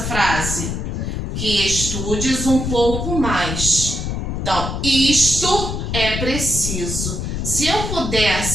frase? Que estudes um pouco mais. Então, isto é preciso. Se eu puder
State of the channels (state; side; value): noise; left; rumble, 3 dB below the sound